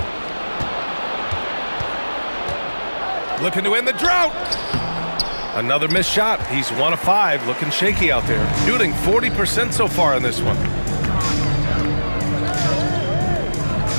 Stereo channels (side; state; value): both; inverted; correlation -1.00